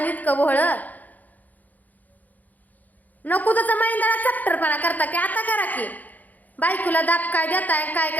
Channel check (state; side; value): late; right; 0.081 ms